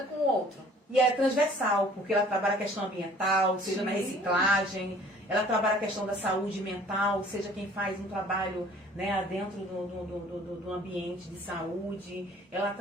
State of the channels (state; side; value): normal; both; correlation 0.53